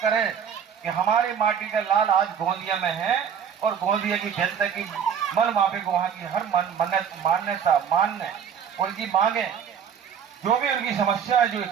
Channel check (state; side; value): quieter; left; 7.7 dB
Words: करें कि हमारी माटी का लाल आज गोंदिया में है, और गोंदिया की जनता की मन माफिक वहां की हर मान्यता मानने, उनकी मांगे, जो भी उनकी समस्या है, जो